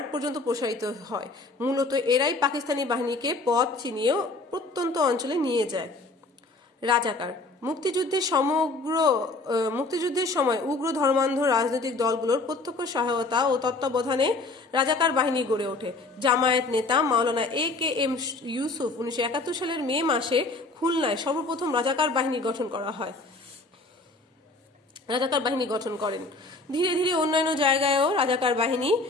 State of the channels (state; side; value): quieter; right; 3.3 dB